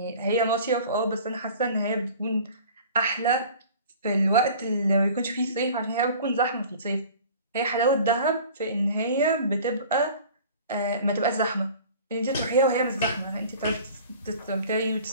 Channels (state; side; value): inverted; both; correlation -0.45